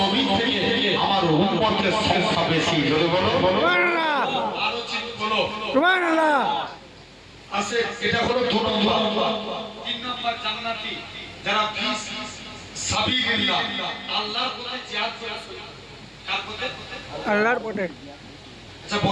নবী থেকে আমার উম্মতের সংখ্যা বেশি জোরে বলো সুবহানাল্লাহ আরো চিৎ বলো সুবহানাল্লাহ আছে এটা হলো 2 নম্বর 3 নম্বর জান্নাতি যারা ফিস সাবিলিল্লাহ আল্লাহর পথে জিহাদ করে কার পথে আল্লাহর পথে আচ্ছা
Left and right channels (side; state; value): both; identical; correlation 1.00